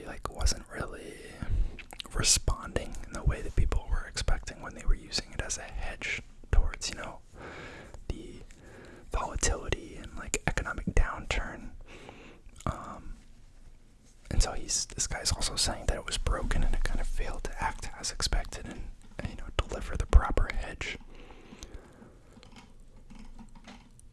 wasn't really responding in the way that people were expecting when they were using it as a hedge towards, the volatility and economic downturn. And so this guy's also saying that it was broken and it kind of failed to act as expected and deliver the proper hedge.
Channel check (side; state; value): both; identical; correlation 1.00